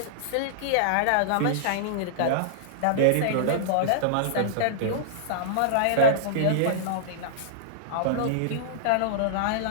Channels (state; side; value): different; both; correlation -0.02